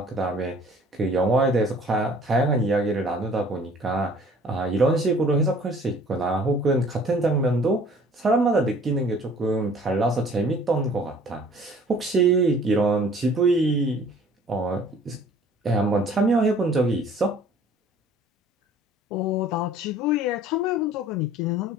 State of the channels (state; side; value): normal; both; correlation 0.52